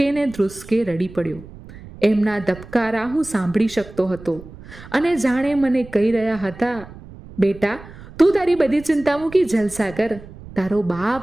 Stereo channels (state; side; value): noise; right; rumble, 17 dB below the sound